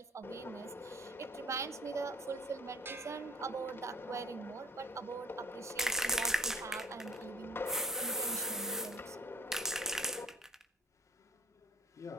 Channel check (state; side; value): normal; both; correlation 0.55